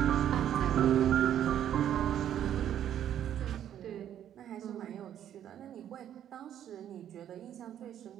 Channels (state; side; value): quieter; left; 10.5 dB